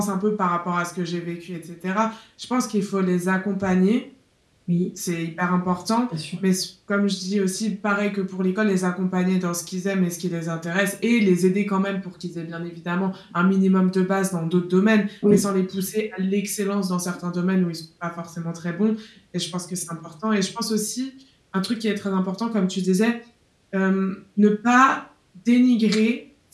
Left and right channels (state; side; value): identical; both; correlation 1.00